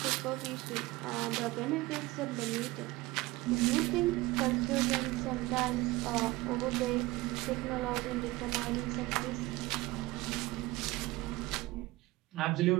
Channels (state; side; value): quieter; left; 20.1 dB